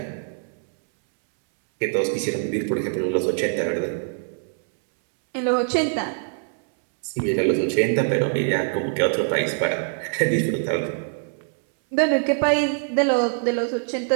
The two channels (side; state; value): left; silent; 63 dB below the other